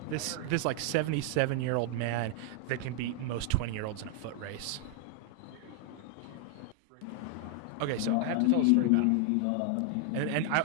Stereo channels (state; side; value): different; both; correlation 0.00